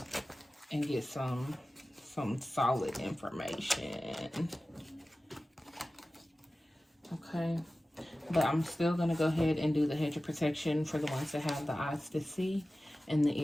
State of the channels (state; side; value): normal; both; correlation 0.96